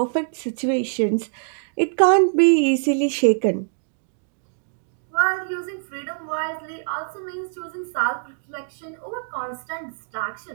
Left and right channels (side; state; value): left; silent; digital silence